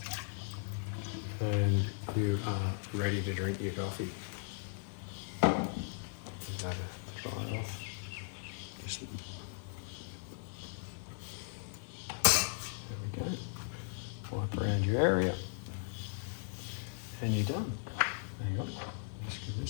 And you are ready to drink your coffee. Give that a try off. Just, there we go. Wipe around your area. And you're done. Hang on. Just give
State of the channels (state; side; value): silent; right; 53 dB below the other